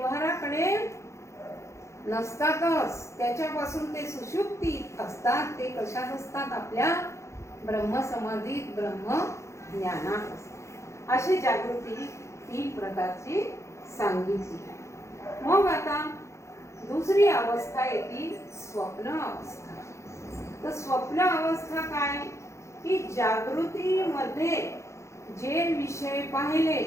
नसतातच, त्याच्यापासून ते सुषुप्तीत असतात. ते कशात असतात? आपल्या ब्रह्मसमाधीत, ब्रह्म ज्ञानात असतात. अशी जागृती 3 प्रकारची सांगितली. मग आता दुसरी अवस्था येते स्वप्न अवस्था. तर स्वप्न अवस्था काय की जागृतीमध्ये जे विषय पाहिले,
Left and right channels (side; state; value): right; late; 0.14 ms